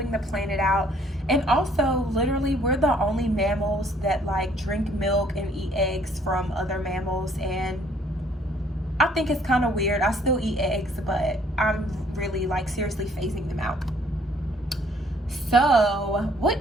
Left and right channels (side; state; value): both; normal; correlation 0.62